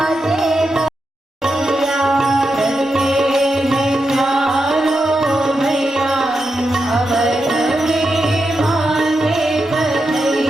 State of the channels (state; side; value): normal; both; correlation 0.87